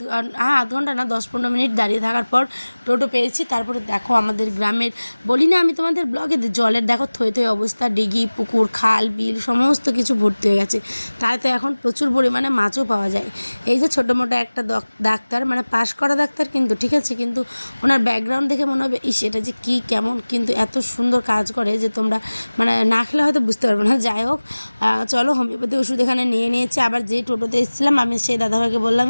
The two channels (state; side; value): inverted; both; correlation -1.00